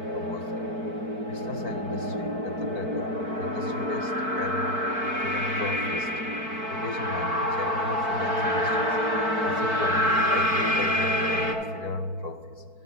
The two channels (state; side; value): late; left; 4.5 ms